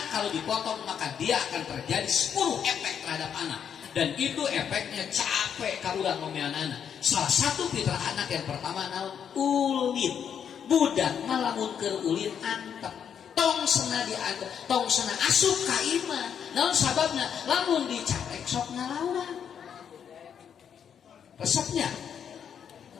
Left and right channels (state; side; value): quieter; right; 8.0 dB